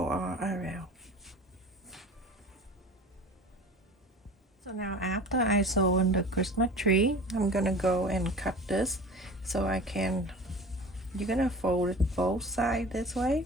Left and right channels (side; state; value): both; normal; correlation 0.38